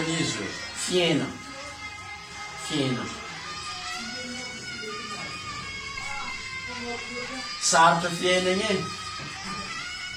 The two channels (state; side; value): identical; both; correlation 1.00